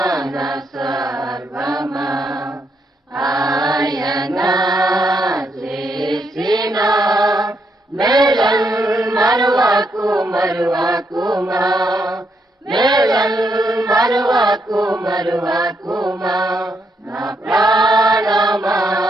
నా సర్వమా ఆయన చేసిన మేలన్ మరువకుమా మేలన్ మరువకుమా నా ప్రాణమా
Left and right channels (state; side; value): normal; both; correlation 0.77